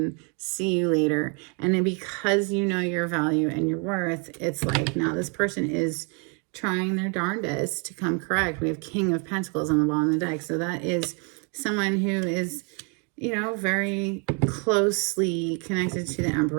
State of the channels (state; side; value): quieter; left; 35.7 dB